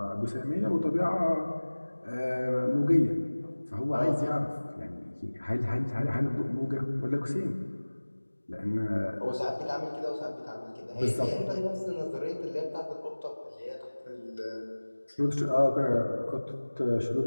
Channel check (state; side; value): inverted; both; correlation -1.00